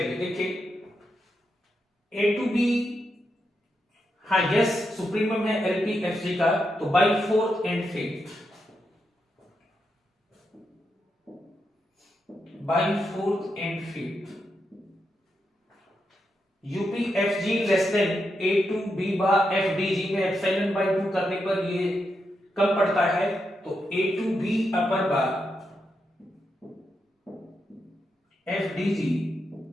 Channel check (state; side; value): normal; both; correlation 0.84